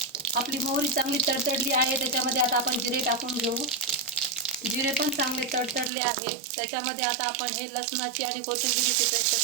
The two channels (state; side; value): drops out; left; at 5.9 s